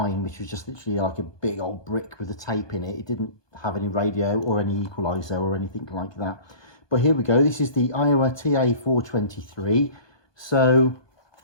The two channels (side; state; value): right; late; 1.2 ms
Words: which was just literally like a big old brick with a tape in it. It didn't have any radio or any equaliser or anything like that. But here we go. This is the Aiwa TA423. So